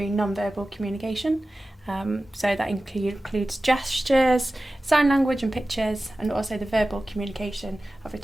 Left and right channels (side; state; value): both; normal; correlation 0.95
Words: non-verbal communication. So that includes gestures, sign language and pictures, and also the verbal communication of a